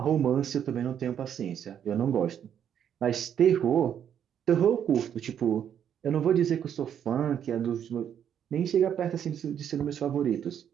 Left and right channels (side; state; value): left; quieter; 9.1 dB